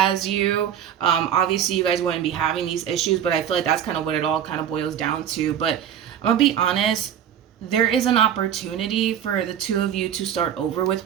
you, obviously you guys wouldn't be having these issues, but I feel like that's kind of what it all kind of boils down to. But I'm gonna be honest, there is an opportunity for the two of you to start over with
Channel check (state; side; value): quieter; left; 9.5 dB